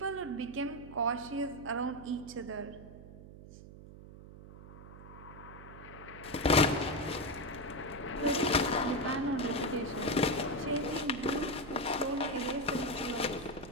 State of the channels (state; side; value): noise; right; hum, 16 dB below the sound